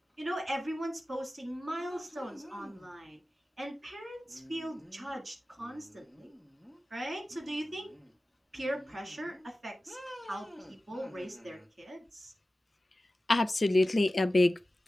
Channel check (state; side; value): normal; both; correlation 0.96